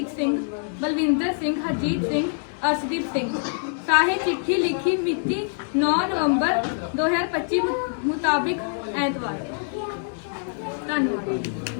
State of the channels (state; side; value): silent; right; digital silence